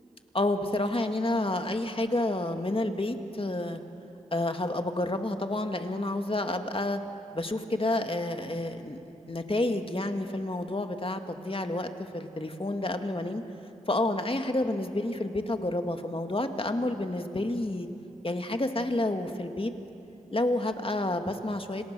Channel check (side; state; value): both; normal; correlation 0.73